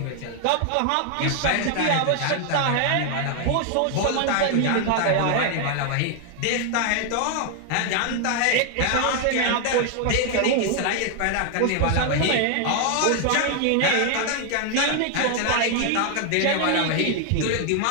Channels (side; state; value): both; different; correlation 0.00